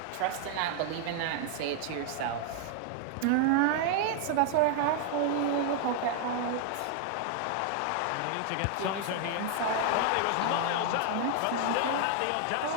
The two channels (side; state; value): both; different; correlation 0.00